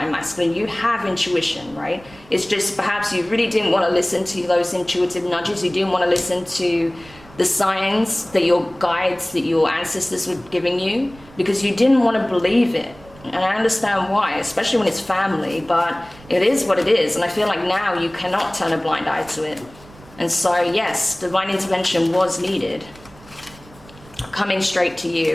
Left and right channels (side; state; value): right; noise; rumble, 23 dB below the sound